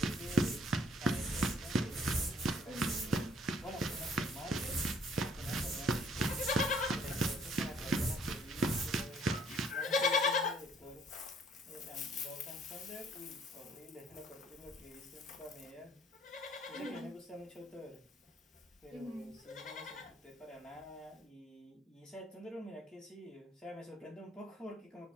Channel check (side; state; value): both; normal; correlation 0.61